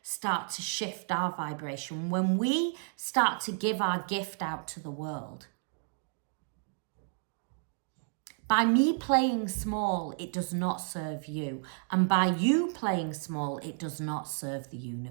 start to shift our vibration. When we start to give our gift out to the world. By me playing small, it does not serve you. And by you playing small, it does not serve the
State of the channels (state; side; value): silent; left; 57 dB below the other